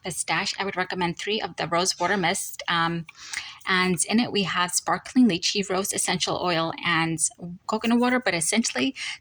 pistache, I would recommend 3 of the rose water mist. And in it, we have sparkling lychee, rose essential oil, and coconut water. But essentially,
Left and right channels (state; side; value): identical; both; correlation 1.00